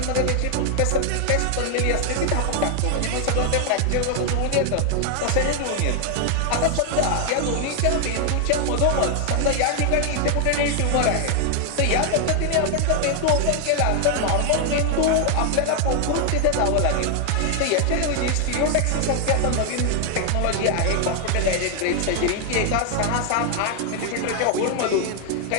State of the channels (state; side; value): different; both; correlation 0.00